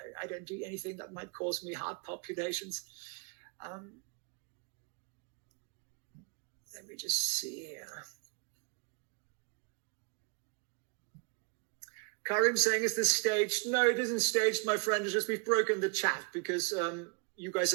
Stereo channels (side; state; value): left; quieter; 35.1 dB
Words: I don't do anything that might cause me heart palpitations. Let me just see here. Karim saying, is this staged? No, it isn't staged, my friend. It's just we've broken the chat because you guys